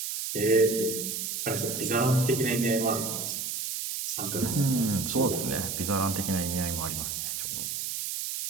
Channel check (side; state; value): right; noise; hiss, 3 dB below the sound